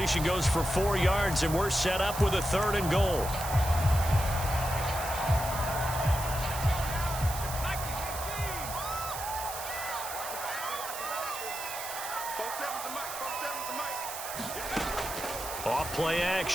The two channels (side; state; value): right; noise; hiss, 8 dB below the sound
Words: goes for 4 yards, and we're set up with a 3rd and goal. Off play